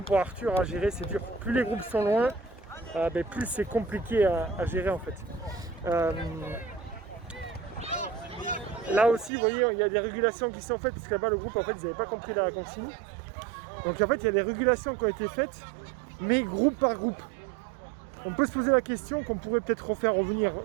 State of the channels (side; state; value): left; drops out; at 9.3 s